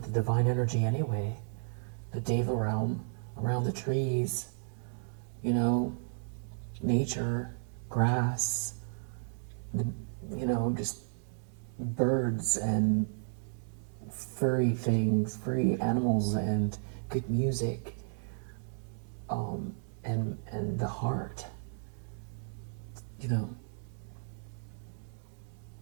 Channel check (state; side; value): silent; left; digital silence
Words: the divine energy anyway. The Deva realm, around the trees, nature, grass, just birds and furry things, furry animals, and good music, and the heart,